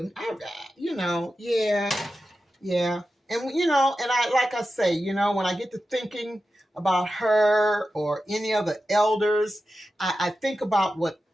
Yeah. And like I say, when I get to thinking about her or any other elders, I think about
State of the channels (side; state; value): both; normal; correlation 0.92